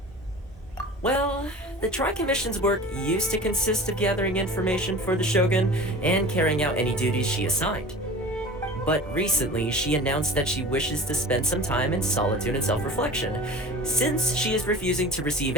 Well, the Tri-Commission's work used to consist of gathering information for the Shogun and carrying out any duties she assigned. But recently, she announced that she wishes to spend some time in solitude and self-reflection. Since she is refusing to receive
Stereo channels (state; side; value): normal; both; correlation 0.38